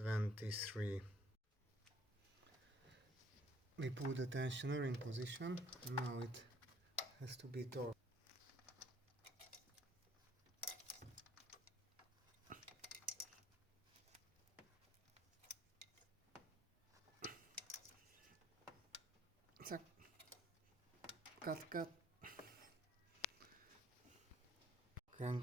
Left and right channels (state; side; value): normal; both; correlation 0.61